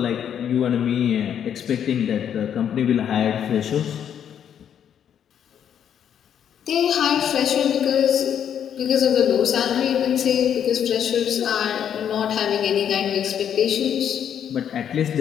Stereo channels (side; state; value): right; quieter; 9.0 dB